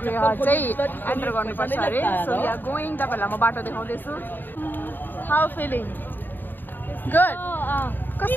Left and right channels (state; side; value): late; right; 0.092 ms